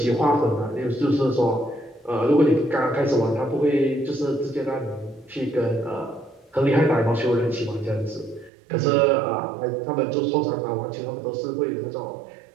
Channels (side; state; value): left; drops out; at 8.5 s